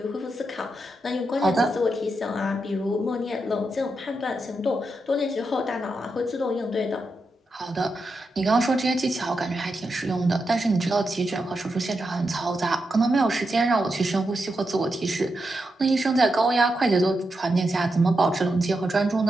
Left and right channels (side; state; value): both; normal; correlation 0.86